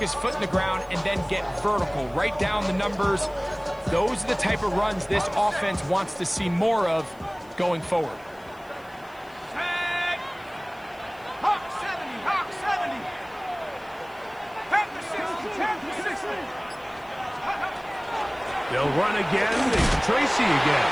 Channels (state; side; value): noise; left; hiss, 28 dB below the sound